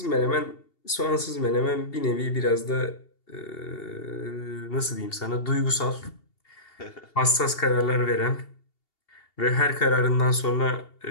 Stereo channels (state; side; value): late; right; 2.8 ms